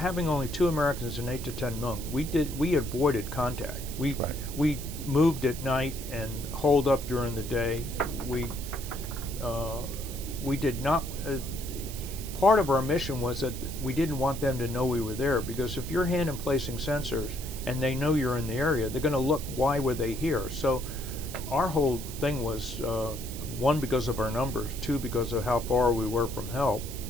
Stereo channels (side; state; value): right; noise; hiss, 11 dB below the sound